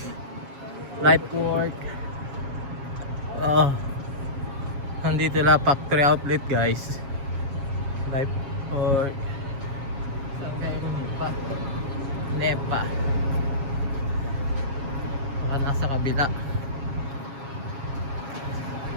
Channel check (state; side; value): late; left; 7.3 ms